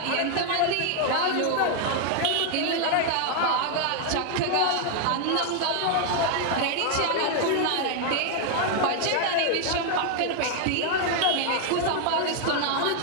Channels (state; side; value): different; both; correlation 0.00